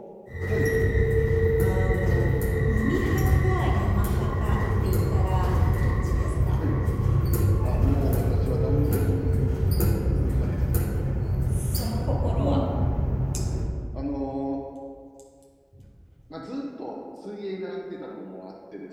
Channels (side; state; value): both; identical; correlation 1.00